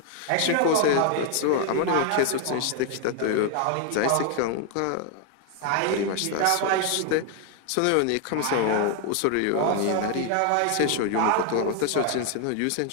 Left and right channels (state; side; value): different; both; correlation 0.00